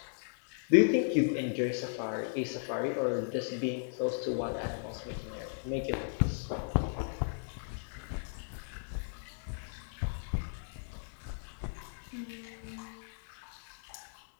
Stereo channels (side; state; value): right; silent; 54 dB below the other